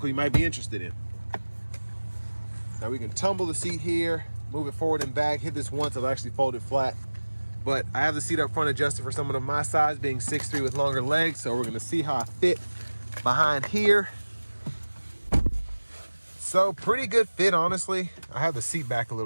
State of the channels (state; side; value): inverted; both; correlation -1.00